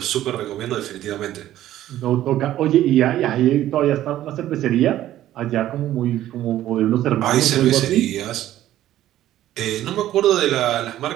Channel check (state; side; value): quieter; left; 13.3 dB